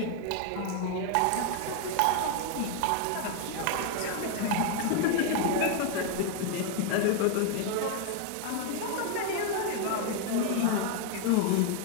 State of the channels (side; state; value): both; different; correlation 0.01